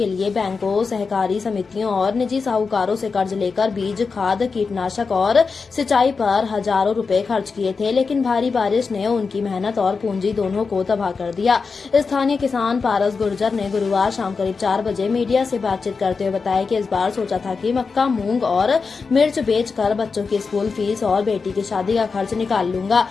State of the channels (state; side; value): quieter; right; 4.8 dB